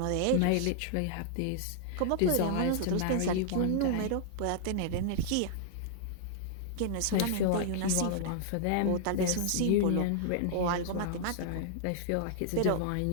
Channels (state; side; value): different; both; correlation -0.01